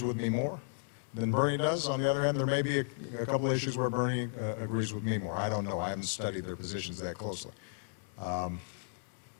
with me more than Bernie does. On the other hand, there may be a couple of issues where Bernie agrees with me more. I don't know. I haven't studied their positions that closely.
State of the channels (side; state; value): right; silent; digital silence